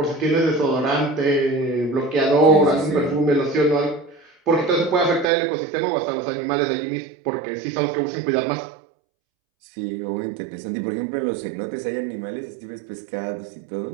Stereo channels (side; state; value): left; drops out; at 5.2 s